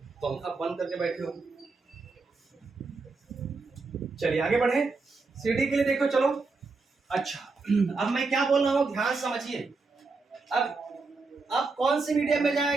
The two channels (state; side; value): quieter; left; 4.0 dB